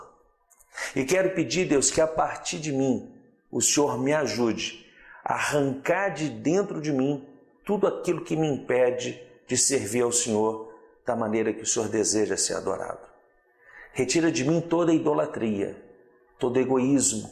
E quero pedir, Deus, que a partir de mim, o Senhor me ajude a arrancar de dentro de mim tudo aquilo que me impede de servir ao Senhor da maneira que o Senhor deseja ser adorado. Retira de mim toda idolatria, todo egoísmo,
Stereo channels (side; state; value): both; identical; correlation 1.00